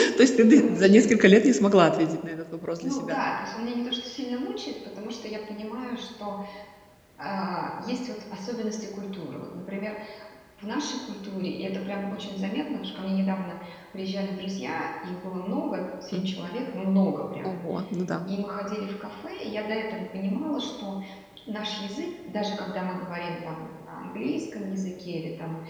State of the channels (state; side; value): identical; both; correlation 1.00